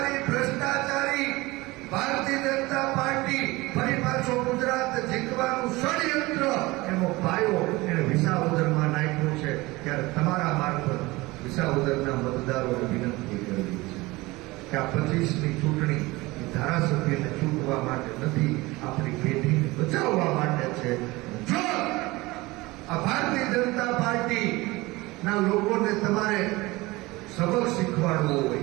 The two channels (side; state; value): left; quieter; 21.4 dB